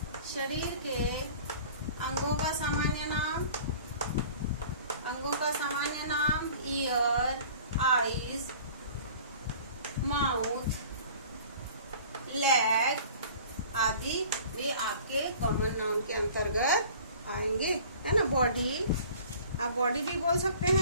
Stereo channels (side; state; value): both; inverted; correlation -0.46